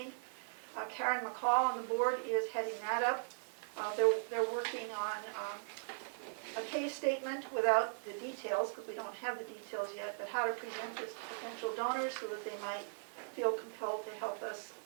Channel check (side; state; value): left; silent; digital silence